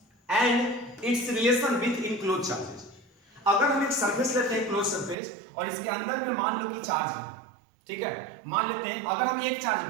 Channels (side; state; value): left; drops out; at 5.2 s